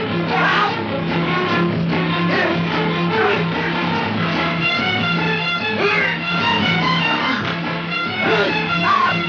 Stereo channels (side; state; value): both; identical; correlation 1.00